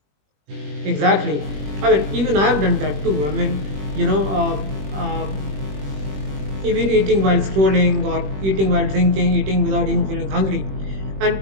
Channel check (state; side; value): late; left; 21 ms